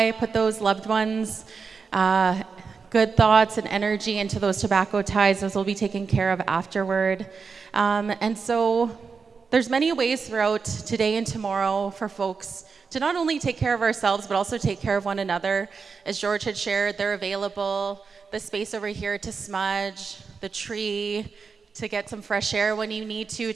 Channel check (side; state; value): left; quieter; 5.2 dB